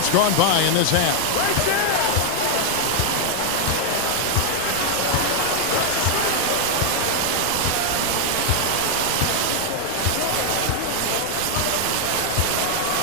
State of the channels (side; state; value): both; different; correlation 0.00